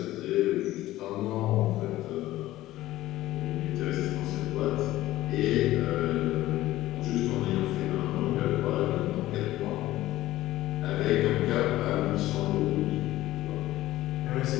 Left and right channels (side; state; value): right; quieter; 15.8 dB